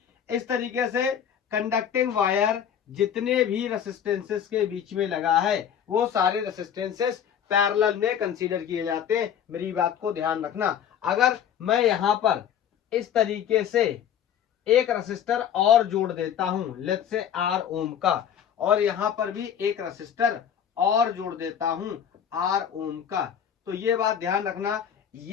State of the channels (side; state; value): right; quieter; 8.9 dB